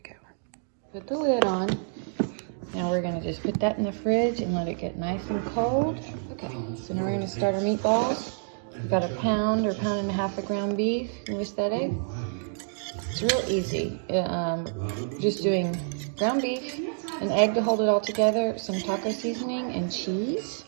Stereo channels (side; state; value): left; silent; digital silence